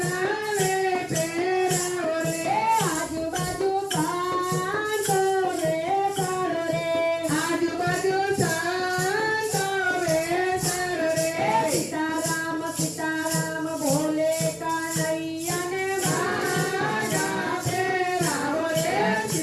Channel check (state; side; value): identical; both; correlation 1.00